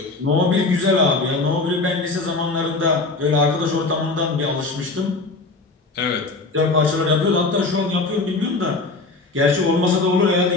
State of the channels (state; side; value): quieter; right; 3.5 dB